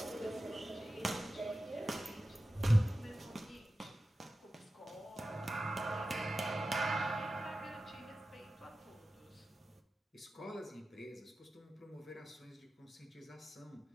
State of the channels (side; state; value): both; normal; correlation 0.94